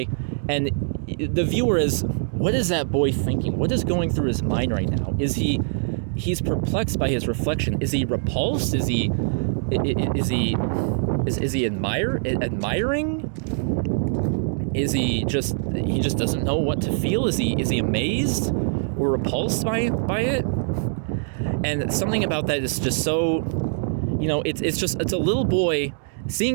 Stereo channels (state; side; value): silent; left; digital silence